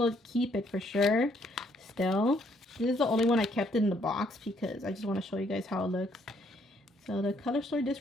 keep it for sure still. This is the only one I kept in the box because I just want to show you guys how it looks. So the color story,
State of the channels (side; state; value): both; normal; correlation 0.68